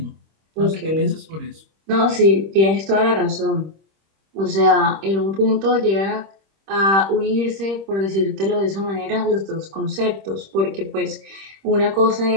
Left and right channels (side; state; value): left; late; 26 ms